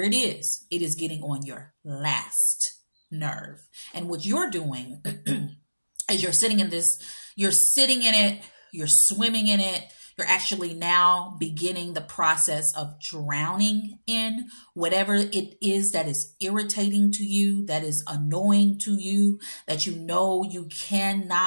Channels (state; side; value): inverted; both; correlation -1.00